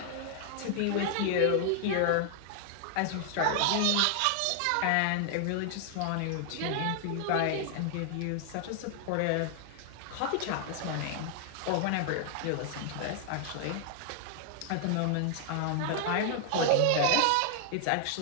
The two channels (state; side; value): different; both; correlation 0.00